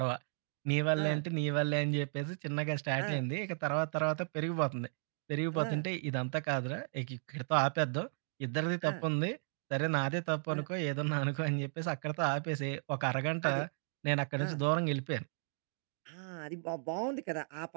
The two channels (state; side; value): silent; left; 54 dB below the other